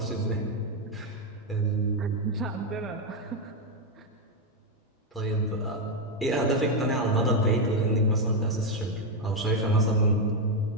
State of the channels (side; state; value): both; normal; correlation 0.04